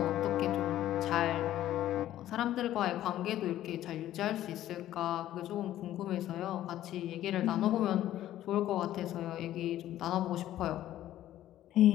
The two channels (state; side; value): quieter; right; 13.1 dB